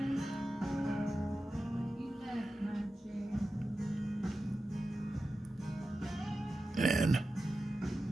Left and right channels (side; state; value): both; normal; correlation 0.93